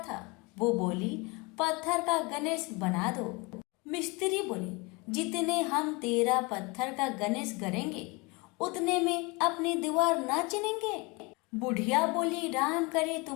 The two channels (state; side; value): quieter; right; 27.1 dB